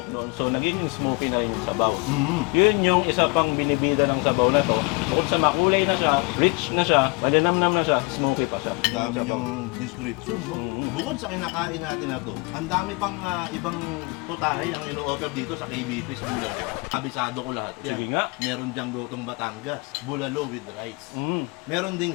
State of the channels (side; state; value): right; quieter; 29.5 dB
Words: doon. So, nagiging smoky na yung sabaw. Yun yung isa pang binibida ng sabaw na to. Bukod sa makulay na siya, rich na siya, malinamnam na siya, smoky pa siya. Ang dami niyang description, no? Bukod sa kinakain natin na to, ang dami pang ibang putahe ang ino-offer dito sa KBP sa Bulalo. Kabisado ko lahat yan. Sige nga. Meron diyang gotong Batangas, bulalo with rice. Meron